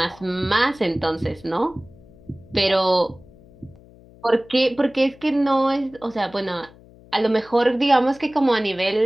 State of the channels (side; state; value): left; noise; hum, 24 dB below the sound